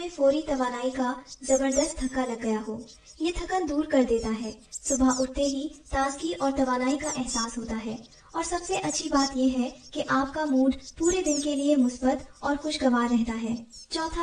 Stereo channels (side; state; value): both; identical; correlation 1.00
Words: فوری توانائی کا زبردست دھکا لگ گیا ہو۔ یہ تھکن دور کر دیتا ہے، صبح اٹھتے ہی تازگی اور توانائی کا احساس ہوتا ہے، اور سب سے اچھی بات یہ ہے کہ آپ کا موڈ پورے دن کے لیے مثبت اور خوشگوار رہتا ہے۔